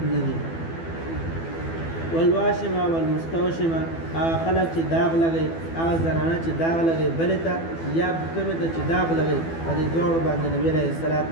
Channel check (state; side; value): late; right; 12 ms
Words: نه دي والواشمه والمستوشمه هغه خلک چې داغ لګوي هغه زنانه چې داغ لګوي بلې ته یا کومې ته چې داغ لګوي په دې دواړو باندې نبي علیه الصلاة